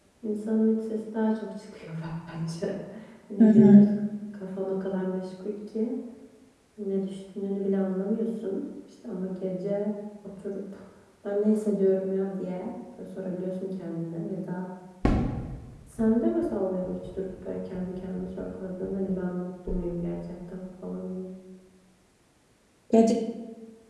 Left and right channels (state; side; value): identical; both; correlation 1.00